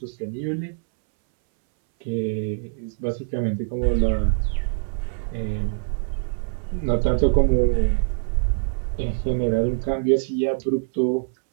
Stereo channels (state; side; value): silent; left; 63 dB below the other